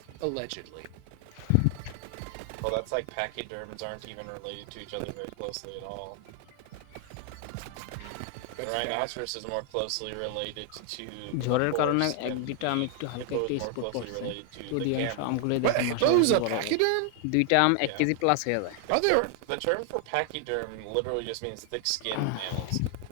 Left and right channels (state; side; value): different; both; correlation 0.00